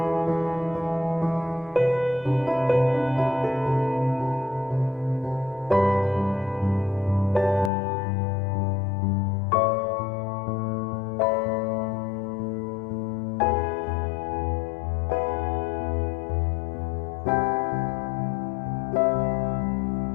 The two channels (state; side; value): drops out; right; at 7.7 s